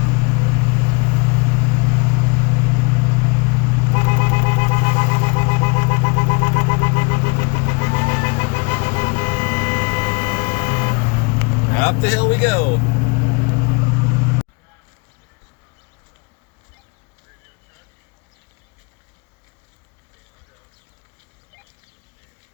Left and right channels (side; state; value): right; quieter; 29.3 dB